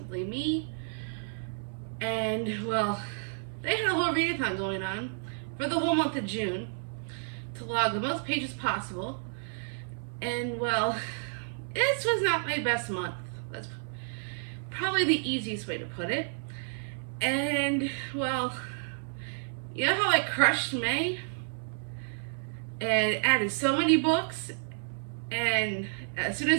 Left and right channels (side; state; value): left; silent; 57 dB below the other